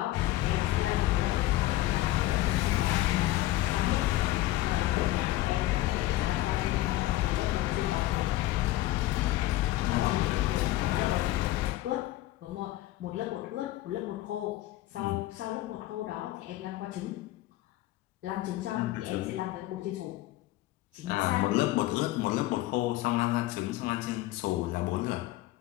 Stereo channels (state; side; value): quieter; right; 16.4 dB